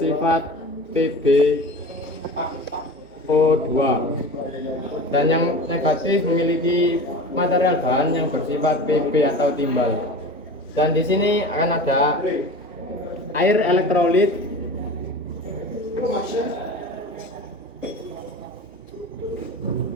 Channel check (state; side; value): noise; right; hum, 27 dB below the sound